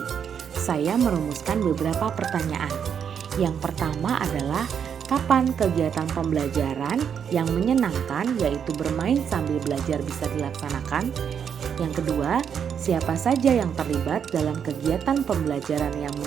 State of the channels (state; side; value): quieter; left; 7.7 dB